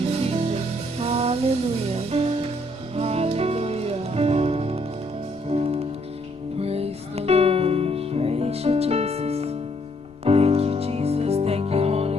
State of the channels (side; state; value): left; noise; rumble, 28 dB below the sound